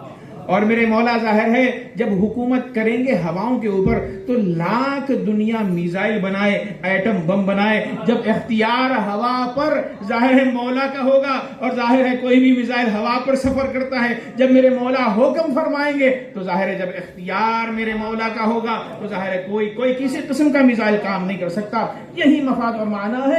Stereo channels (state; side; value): identical; both; correlation 1.00